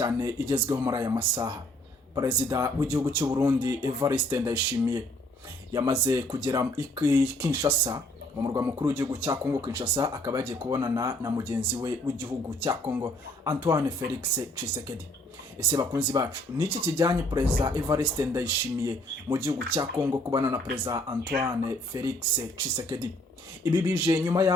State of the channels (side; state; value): both; normal; correlation 0.62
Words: igezweho muri aya masaha. Perezida w'igihugu cy'u Burundi Evariste Ndayishimiye yamaze kugera Kinshasa, mu murwa mukuru w'igihugu cya Kongo Kinshasa, akaba yagiye kubonana na mugenzi we w'igihugu cya Kongo Antoine Felix Tshisekedi. Ese bakunzi bacu, niki kijyanye Perezida Evariste Ndayishimiye mu gihugu cya Kongo kubana na Perezida Antoine Felix Tshisekedi? Ibi bije nyuma